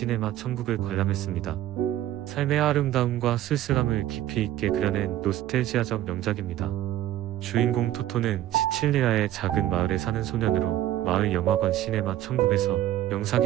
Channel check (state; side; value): quieter; left; 13.2 dB